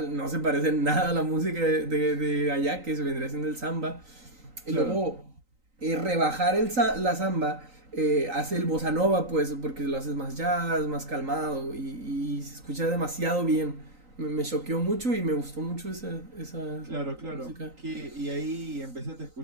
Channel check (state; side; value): late; left; 3.9 ms